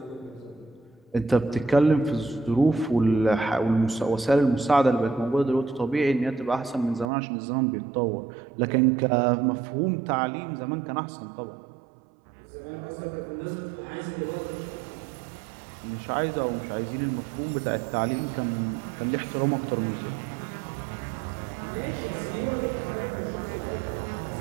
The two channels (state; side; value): drops out; left; at 7.1 s